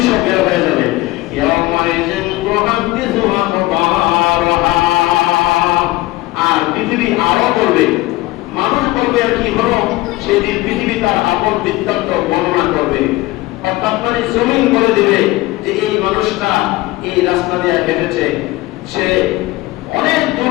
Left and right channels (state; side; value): quieter; right; 19.1 dB